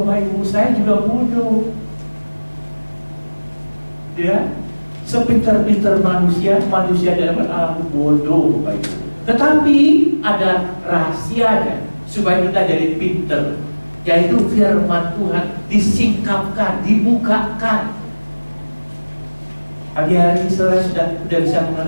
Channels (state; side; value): inverted; both; correlation -1.00